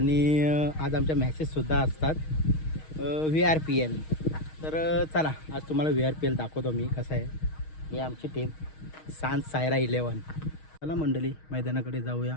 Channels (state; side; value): late; right; 6.4 ms